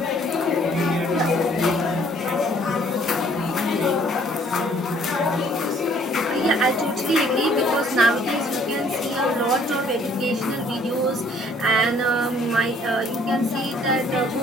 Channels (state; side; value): normal; both; correlation 0.60